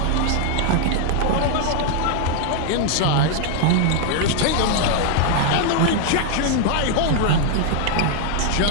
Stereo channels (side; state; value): both; different; correlation 0.00